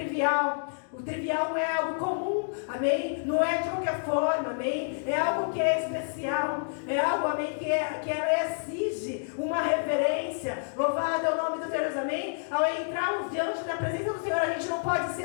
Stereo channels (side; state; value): right; silent; digital silence